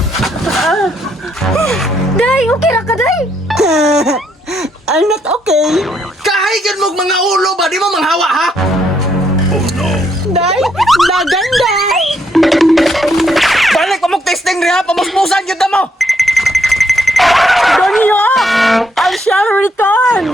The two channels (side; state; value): both; normal; correlation 0.74